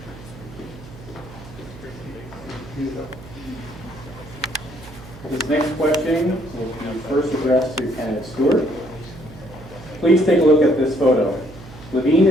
This next question will be first addressed to candidate Stewart. Please take a look at this photo. Levine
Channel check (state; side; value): noise; right; hum, 17 dB below the sound